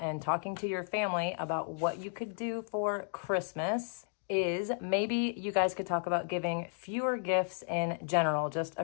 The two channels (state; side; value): silent; right; digital silence